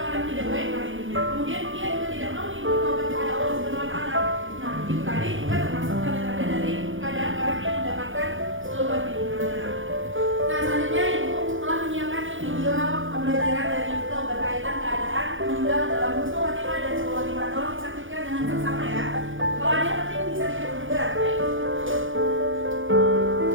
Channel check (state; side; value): late; left; 0.57 ms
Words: tidak baik kali ini. Kemudian dia juga tidak mau nih bertobat kepada Allah Subhanahu Wa Taala. Nah, itu tadi juga termasuk tanda-tanda dari keadaan orang yang mendapatkan sulul khotimah. Nah, selanjutnya ibu telah menyiapkan nih video pembelajaran dari itu berkaitan keadaan meninggal dalam husnul khotimah dan sulul khotimah. Tolong disaksikan dengan seksama ya. Kalau ada yang penting bisa dicatat juga.